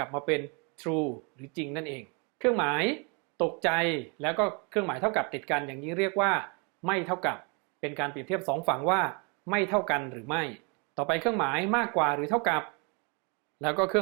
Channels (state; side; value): quieter; left; 33.6 dB